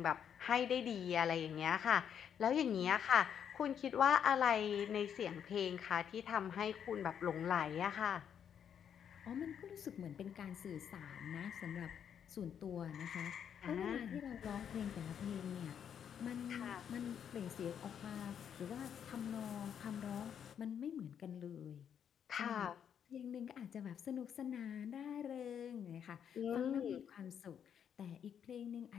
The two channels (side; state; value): right; quieter; 8.4 dB